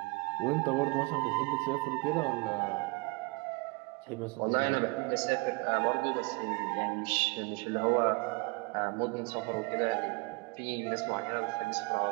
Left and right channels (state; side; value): quieter; left; 27.7 dB